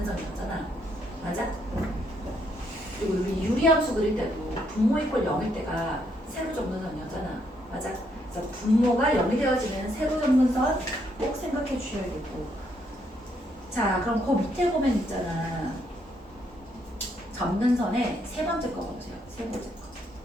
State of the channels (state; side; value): normal; both; correlation 0.73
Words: 맞아? 그리고 우리 유리함수 그릴 때도 분모 이퀄 0일 때가 세로 점근선이었잖아. 맞아? 그래서 분모가 0이 되어지는 세로 점근선 꼭 생각해 주셔야겠고. 자, 그럼 그 밑에 보면 있잖아. 점근선의 세 번째 거 봐보세요. 세 번째 거.